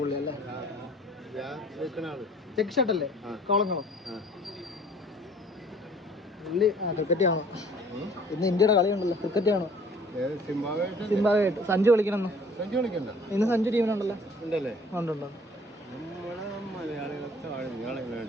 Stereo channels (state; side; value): normal; both; correlation 0.53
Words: പുള്ളി അല്ലേ? ചെക്ക് ഷർട്ട് അല്ലേ? കോളങ്ങളും പുള്ളി ക്രിക്കറ്റ് കാണോ? ഇന്ന് ഇന്ത്യയുടെ കളിയുണ്ടല്ലോ, ക്രിക്കറ്റ് കാണോ? സിംബാബ്വേയായിട്ട് സഞ്ജു കളിക്കണം. ഇന്ന് സഞ്ജു ടീമിനുണ്ടല്ലോ. ഉണ്ട്.